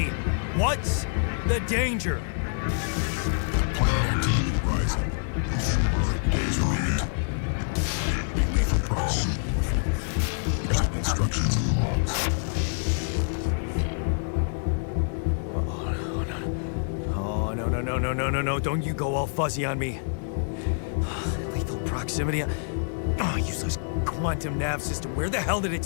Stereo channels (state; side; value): silent; right; digital silence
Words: What's the danger? Planet activity rising. Days remaining. Be lethal proximity. Present instructions in the logs. Oh, no, don't you go all fuzzy on me. Lethal proximity. Oh, useless quantum nav system. Where the hell did it